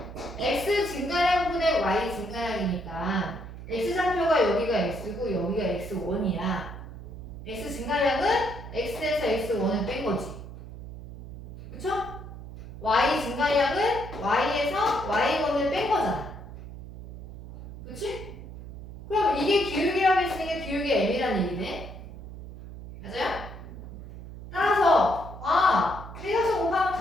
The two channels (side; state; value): right; noise; hum, 12 dB below the sound